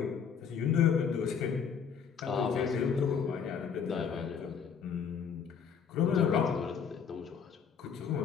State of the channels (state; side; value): quieter; right; 6.8 dB